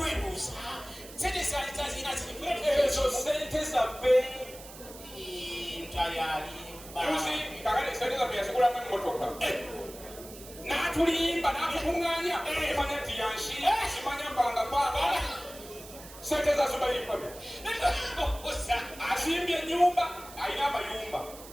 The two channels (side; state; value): right; noise; hiss, 16 dB below the sound